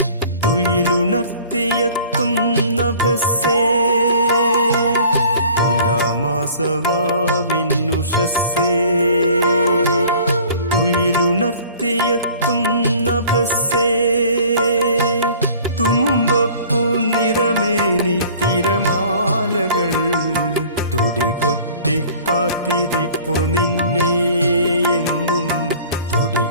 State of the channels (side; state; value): both; inverted; correlation -0.49